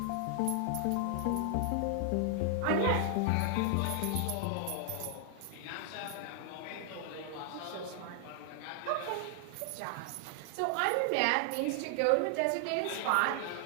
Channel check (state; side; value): different; both; correlation 0.00